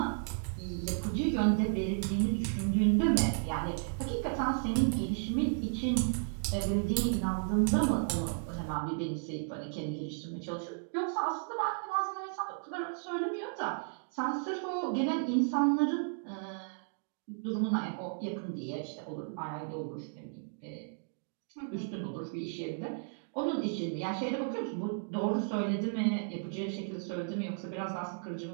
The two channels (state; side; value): silent; left; digital silence